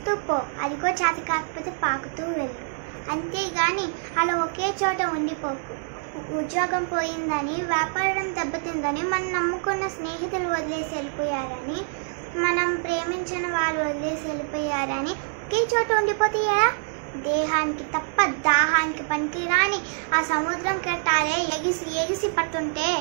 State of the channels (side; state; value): left; silent; 61 dB below the other